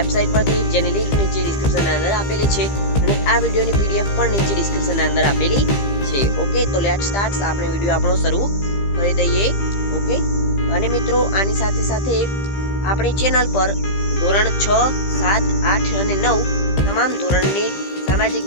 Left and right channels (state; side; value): late; right; 15 ms